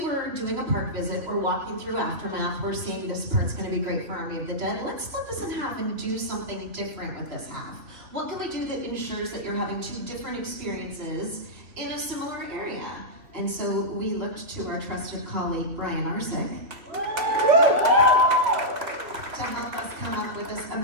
were doing a park visit, we're walking through Aftermath, we're seeing this part's gonna be great for Army of the Dead. Let's split this in half and do something different with this half. What can we do that ensures that you're having 2 different experiences in a similar area? And so we looked to our trusted colleague, Brian Arsick, to help us come up with this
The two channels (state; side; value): late; left; 2.9 ms